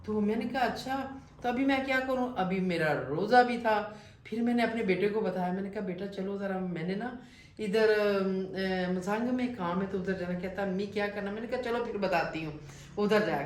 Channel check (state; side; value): identical; both; correlation 1.00